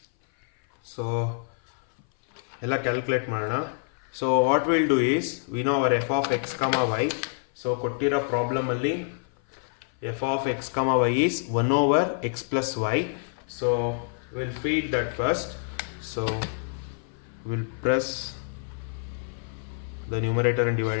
So ಎಲ್ಲ calculate ಮಾಡೋಣ. So what will do is we know our f of X comma y. So ಕೊಟ್ಟಿರೋ ಪ್ರಾಬ್ಲಮಲ್ಲಿ f of X comma y is 1 over x plus y. So will feed that first. So will press the numerator and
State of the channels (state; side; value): silent; right; 56 dB below the other